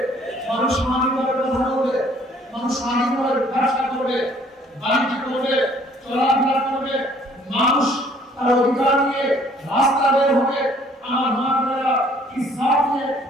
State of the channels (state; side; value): normal; both; correlation 0.59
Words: মানুষ স্বাধীনভাবে কথা বলবে, মানুষ স্বাধীনভাবে ব্যবসা করবে, বাণিজ্য করবে, চলাফেরা করবে, মানুষ তার অধিকার নিয়ে রাস্তা বের হবে। আমার মা বোনেরা ইসলাম নিয়ে